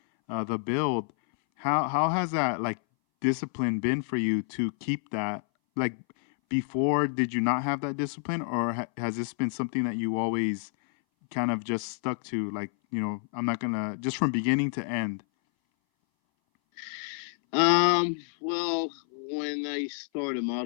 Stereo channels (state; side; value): silent; right; 59 dB below the other